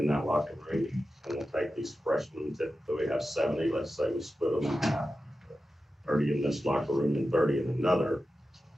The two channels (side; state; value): both; normal; correlation 0.92